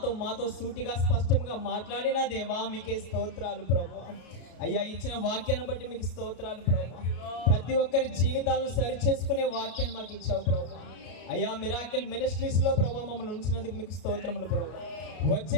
మాతో సూటిగా స్పష్టంగా మాట్లాడిన దేవా మీకే స్తోత్రాలు ప్రభువా. అయ్యా ఇచ్చిన వాక్యాన్ని బట్టి మీకు స్తోత్రాలు ప్రభువా. ప్రతి ఒక్కరి జీవితాలను సరిచేసుకునే వాక్యాన్ని మాకు ఇచ్చావు ప్రభువా. అయ్యా మిరాకిల్ మినిస్ట్రీస్ లో ప్రభువా మమ్మల్ని ఉంచినందుకు మీకు స్తోత్రములు ప్రభువా.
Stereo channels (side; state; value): right; late; 33 ms